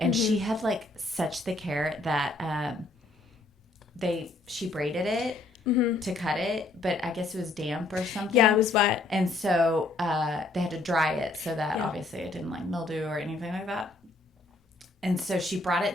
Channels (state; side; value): quieter; right; 3.1 dB